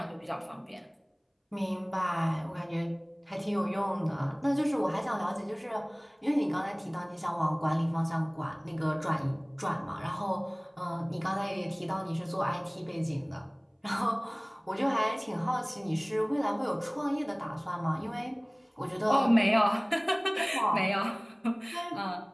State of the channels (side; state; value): both; identical; correlation 1.00